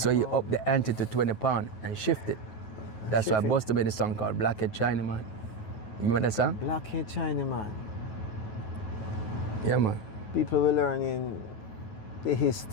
he upped the ante to £20 and shifted. That's why Buster made a song called Blackhead Chinaman. You remember that song? Blackhead Chinaman. Yeah, man. People were learning the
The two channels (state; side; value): late; right; 9.3 ms